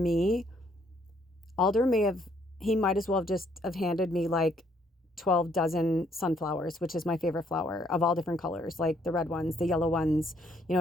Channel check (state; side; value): normal; both; correlation 0.68